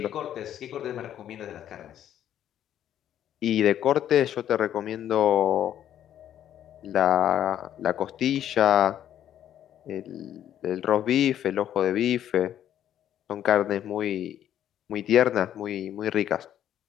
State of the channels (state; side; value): quieter; right; 10.8 dB